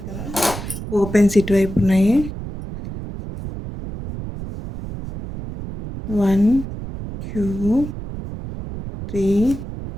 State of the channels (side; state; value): right; noise; rumble, 9 dB below the sound